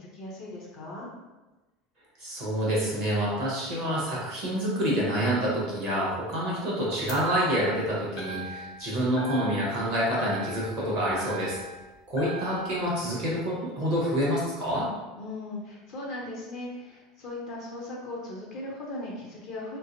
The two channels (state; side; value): normal; both; correlation 0.32